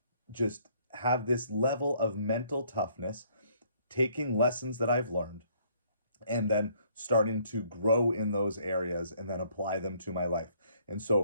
just have this level of mental toughness, taking lessons that I've learned and then starting to grow in those areas and then apply them to my life. And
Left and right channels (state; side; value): inverted; both; correlation -0.64